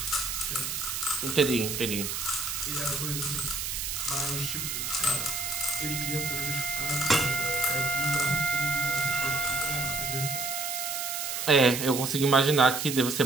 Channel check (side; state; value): right; noise; hiss, 3 dB below the sound